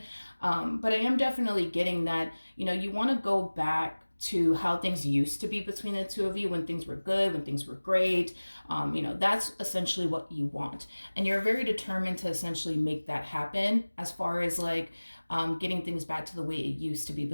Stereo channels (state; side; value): inverted; both; correlation -1.00